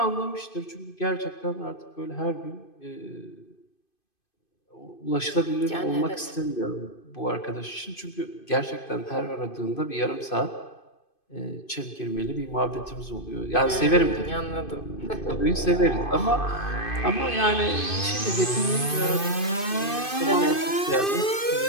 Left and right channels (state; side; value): late; right; 2.5 ms